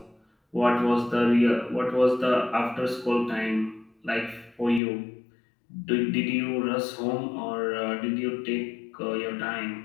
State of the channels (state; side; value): drops out; right; at 4.8 s